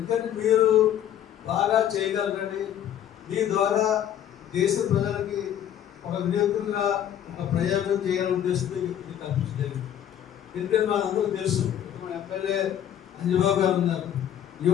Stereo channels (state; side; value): quieter; right; 10.3 dB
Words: మీరు బాగా చేయగలరని, మీ ద్వారా దేశ ప్రజలకి ఒక వినియోగంగా ఒక ప్రయోగం చేయాలనే ఉద్దేశంతో ఇది కల్పించలేదు. ఎందుకంటే మనందరూ తెలుసు, మన ఎమ్మెల్యే అంజబాబు గారు ఉన్నారు.